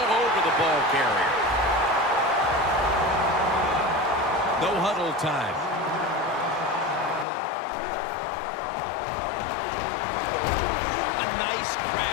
over the ball carrier. No huddle time. A nice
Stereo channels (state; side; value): drops out; right; at 7.2 s